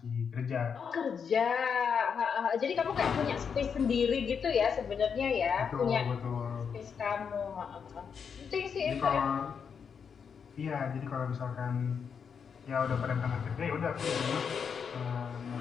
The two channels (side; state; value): right; quieter; 6.6 dB